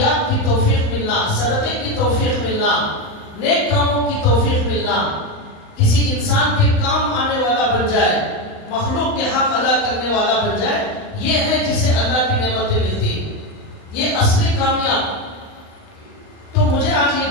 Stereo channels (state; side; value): late; right; 39 ms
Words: کی توفیق ملنا، صدقے کی توفیق ملنا، نیک کاموں کی توفیق ملنا، کسی انسان کے کام آنے والا بن جائے، مخلوق کے حق ادا کرنے والا بن جائے، یہ ہے جسے اللہ کی نعمتیں ملتی، یہ اصلی کامیاب. تو مجھے آج